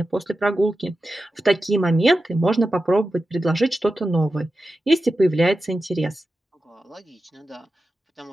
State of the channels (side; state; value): both; normal; correlation 0.92